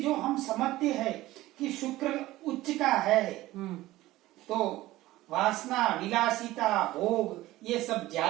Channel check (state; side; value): quieter; left; 17.0 dB